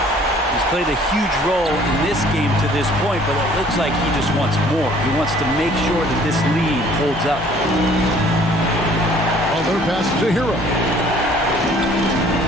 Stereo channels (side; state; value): both; normal; correlation 0.56